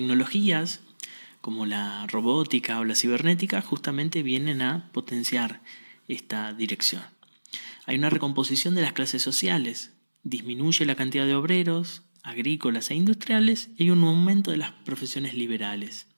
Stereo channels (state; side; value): inverted; both; correlation -1.00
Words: como la robótica o la cibernética justamente vienen a potenciar esta dirección. Hay una recomposición de las clases sociales, disminuye la cantidad de obreros, agrícolas e industriales y hay un aumento de las profesiones liberales.